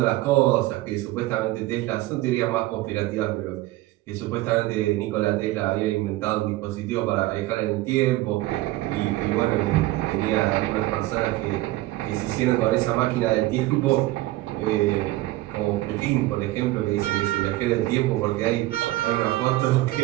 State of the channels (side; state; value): left; quieter; 17.6 dB